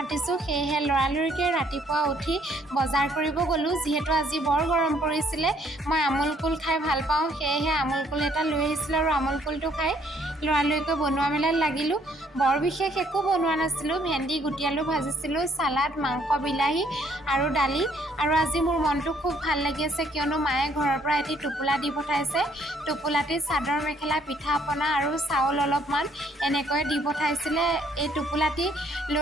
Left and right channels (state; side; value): normal; both; correlation 0.65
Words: সেয়েহে লৰালৰিকৈ ৰাতিপুৱা উঠি বজাৰ কৰিব গ'লোঁ। যিহেতু আজি বৰ গৰম পৰিছিলে, মই আমুল কুল খাই ভাল পাওঁ, সেয়েহে আমুল কুল এটা লৈ আহিছিলোঁ আৰু আমুল কুলটো খাই লৰালৰিকৈ বনোৱা মেলাত লাগিলোঁ। বৰ বিশেষ একো বনোৱা নাছিলোঁ, ভেন্দি গুটি আলু ভাজিছিলোঁ, চালাড, মাংস, বিলাহী আৰু দালি। আৰু আজি মোৰ মনটো খুব ভাল লাগি আছে, কিয়নো মায়ে ঘৰৰ পৰা এটি টোপোলা দি পঠাইছে। টোপোলাটিত চাদৰ মেখেলা, পিঠা পনা আৰু চাউল অলপমান এনেকৈ দি পঠাইছিলে। এই টোপোলাটি